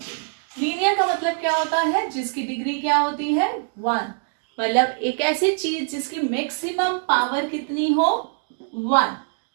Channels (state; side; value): silent; left; digital silence